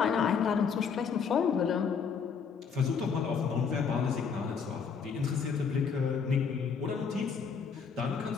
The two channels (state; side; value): quieter; right; 6.1 dB